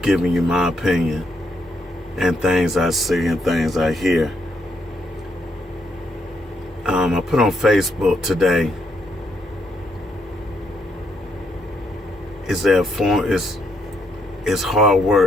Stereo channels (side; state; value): both; normal; correlation 0.76